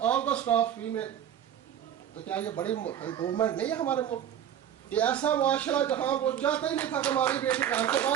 all the staff female. تو کیا یہ بڑی امپروومنٹ نہیں ہے ہمارے ملک؟ یہ ایسا معاشرہ جہاں وہ چاہتا ہی نہیں تھا کہ ہماری بیٹی گھر سے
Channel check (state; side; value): quieter; left; 9.9 dB